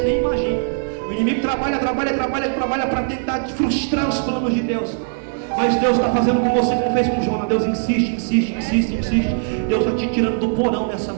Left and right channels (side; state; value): left; silent; digital silence